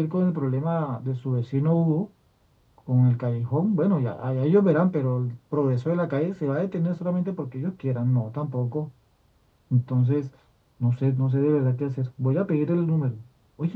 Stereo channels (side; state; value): both; identical; correlation 1.00